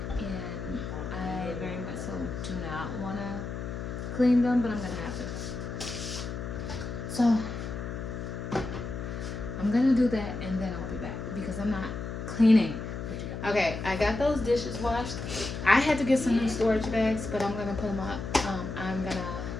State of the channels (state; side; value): noise; left; hum, 6 dB below the sound